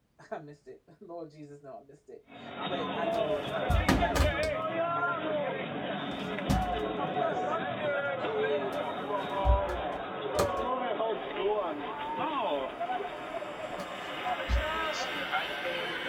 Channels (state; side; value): identical; both; correlation 1.00